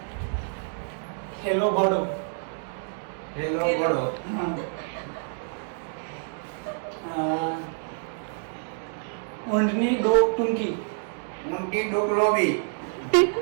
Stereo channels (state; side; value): silent; left; digital silence